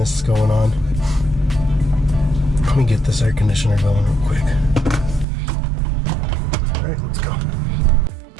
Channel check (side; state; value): left; drops out; at 5.2 s